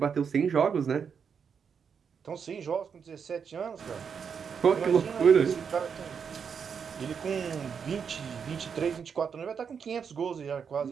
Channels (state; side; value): quieter; left; 6.7 dB